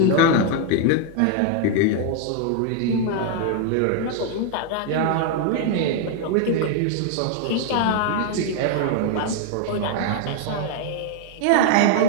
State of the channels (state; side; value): different; both; correlation 0.00